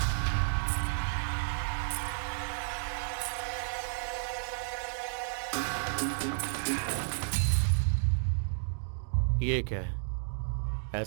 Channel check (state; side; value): silent; left; digital silence